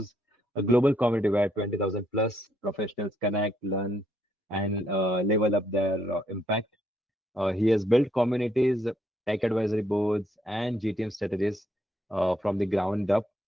a global community where 20,000 plus professionals connect, learn, and level up their impact. He has built communities, tech advisory boards, and GTM strategies from the ground up,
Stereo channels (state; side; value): normal; both; correlation 0.73